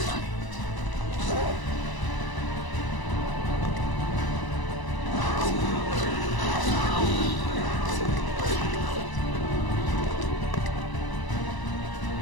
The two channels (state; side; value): late; right; 1.0 ms